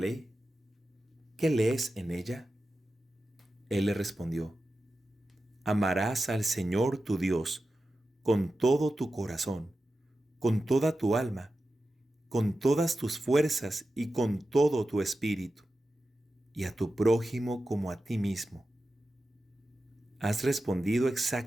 ¿Qué lees en ella? Él le respondió: Amarás al Señor tu Dios con todo tu corazón, con toda tu alma, con todas tus fuerzas y con todo tu espíritu, y a tu prójimo como a ti mismo. Has respondido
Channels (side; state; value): both; normal; correlation 0.92